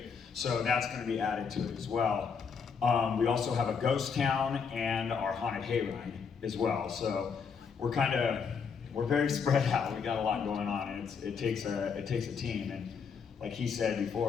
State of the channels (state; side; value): quieter; right; 6.1 dB